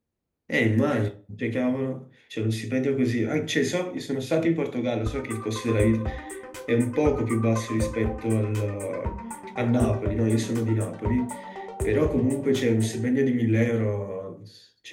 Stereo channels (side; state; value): both; identical; correlation 1.00